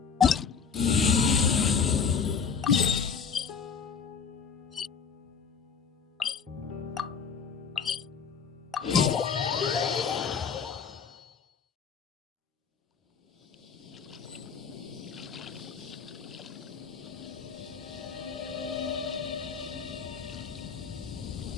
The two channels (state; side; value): quieter; right; 6.1 dB